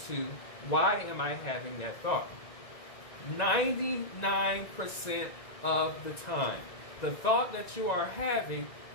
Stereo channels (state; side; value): late; right; 1.9 ms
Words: why am I having that thought? 99% of the time, the thought that you are having